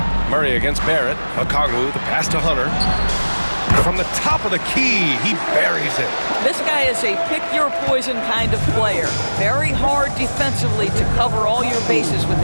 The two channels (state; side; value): inverted; both; correlation -1.00